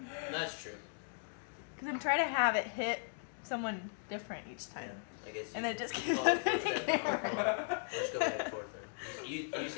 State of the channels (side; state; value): right; silent; digital silence